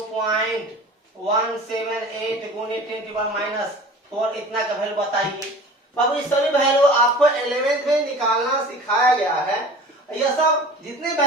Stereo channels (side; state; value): both; normal; correlation 0.41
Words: गुने 10⁻⁴ इतना का वैल्यू बताइए। बाबू इस सभी वैल्यू आपको 11th में निकालना सिखाया गया है। यह सब जितने